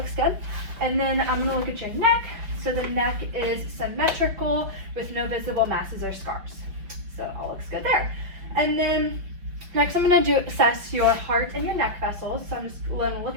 good. And then I'm going to look at your neck. So the neck is symmetrical with no visible masses or scars. So it all looks good there. And then next I'm going to assess your heart and your neck vessels. So I'm just going to look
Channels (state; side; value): late; left; 5.7 ms